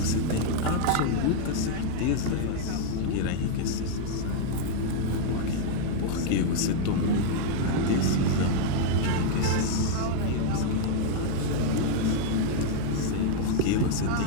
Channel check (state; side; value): different; both; correlation 0.00